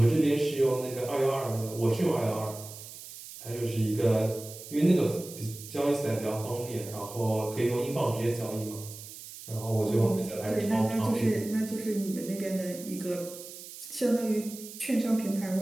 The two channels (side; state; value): right; noise; hiss, 14 dB below the sound